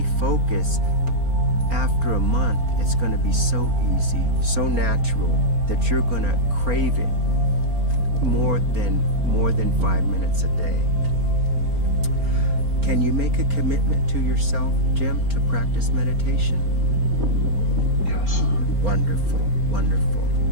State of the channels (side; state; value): left; late; 4.4 ms